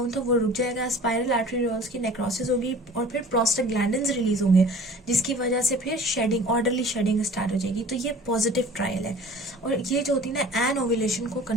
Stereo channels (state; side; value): normal; both; correlation 0.46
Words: था वो रुक जाएगा, स्पाइरल आर्टेरियोल्स की नेक्रोसिस होगी और फिर प्रोस्टाग्लैंडिन्स रिलीज होंगे, जिसकी वजह से फिर शेडिंग, ऑर्डरली शेडिंग स्टार्ट हो जाएगी। तो ये पॉजिटिव ट्रायल है और ये जो होती है ना एन ओव्यूलेशन को